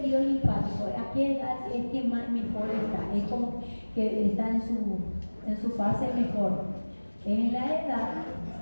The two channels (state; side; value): inverted; both; correlation -1.00